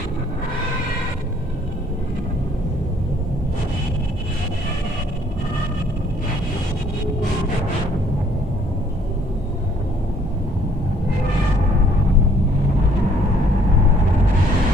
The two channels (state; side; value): normal; both; correlation 0.62